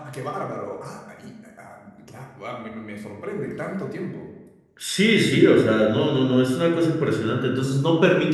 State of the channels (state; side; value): identical; both; correlation 1.00